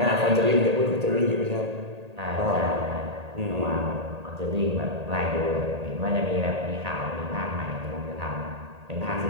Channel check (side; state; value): left; late; 1.8 ms